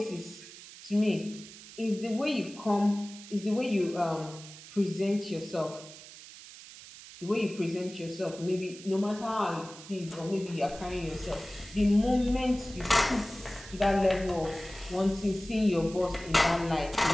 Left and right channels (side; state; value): right; noise; hiss, 16 dB below the sound